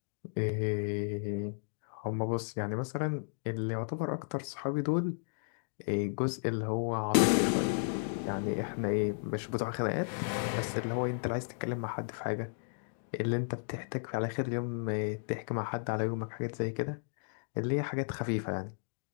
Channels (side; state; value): right; silent; digital silence